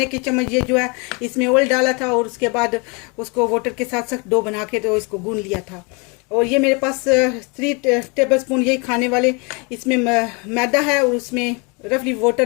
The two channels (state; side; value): quieter; right; 31.3 dB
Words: के चम्मच ये जो है इसमें ऑयल डाला था। और उसके बाद उसको वाटर के साथ साथ डो बना के तो इसको गूंद लिया था। और ये मेरे पास 3 टेबलस्पून यही खाने वाले इसमें मैदा है, और उसमें रफली